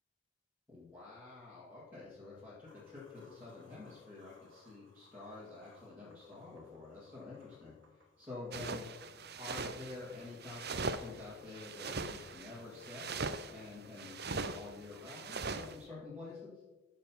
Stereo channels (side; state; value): both; normal; correlation 0.15